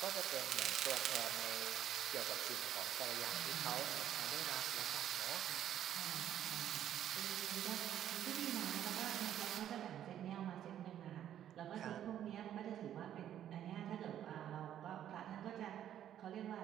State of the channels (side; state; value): left; quieter; 10.8 dB